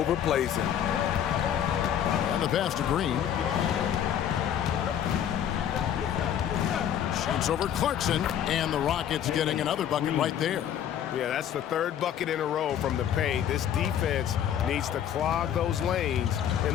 him. And the pass to Green. Shoots over Clarkson, and the Rockets getting another bucket right there. Yeah, that's the 3rd bucket in a row from the paint. This defense needs to clog those lanes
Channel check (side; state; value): right; quieter; 9.7 dB